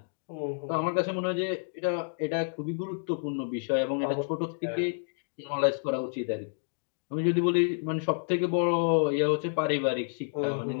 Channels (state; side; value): silent; right; digital silence